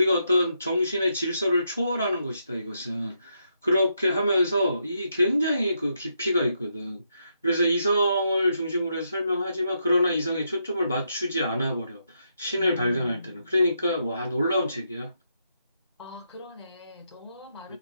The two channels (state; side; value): inverted; both; correlation -0.80